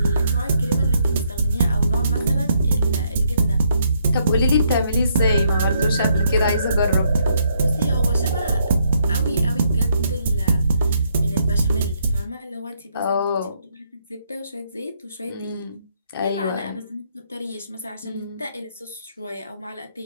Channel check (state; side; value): inverted; both; correlation -0.73